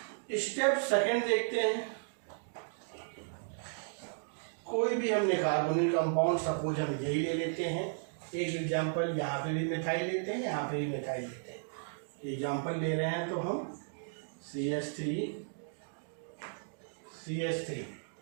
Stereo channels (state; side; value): silent; left; digital silence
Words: Step 2 देखते हैं। कोई भी हमने कार्बोनिल कंपाउंड, सपोज हम यही ले लेते हैं, एक एग्जांपल, यहाँ पे भी मिथाइल लेते हैं, यहाँ पे भी मिथाइल लेते हैं। एग्जांपल ले रहे हैं तो हम CH3,